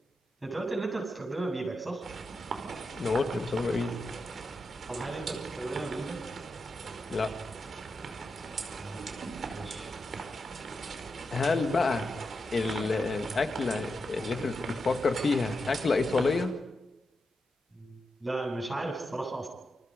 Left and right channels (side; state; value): both; normal; correlation 0.87